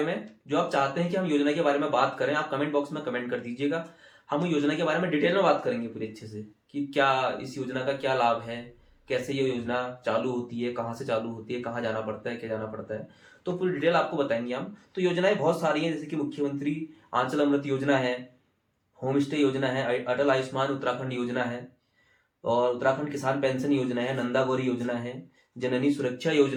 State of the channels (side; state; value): both; identical; correlation 1.00